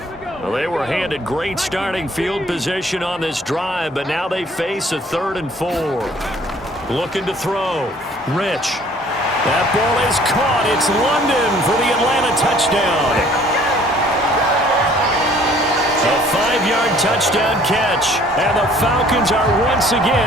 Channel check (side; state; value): both; normal; correlation 0.56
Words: Well, they were handed great starting field position on this drive, but now they face a 3rd and 4. Looking to throw. Rich. That ball is caught. It's London for the Atlanta touchdown. A 5-yard touchdown catch, and the Falcons are once